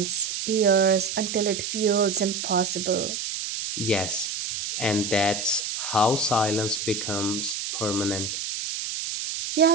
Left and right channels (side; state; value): right; noise; hiss, 4 dB below the sound